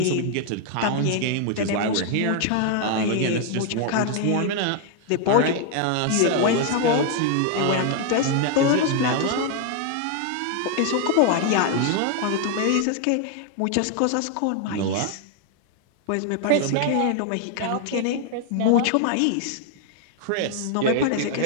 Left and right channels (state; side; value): different; both; correlation 0.00